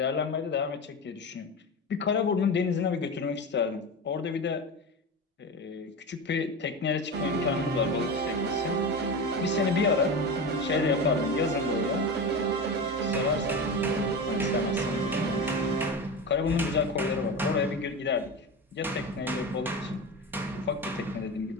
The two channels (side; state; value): both; normal; correlation 0.24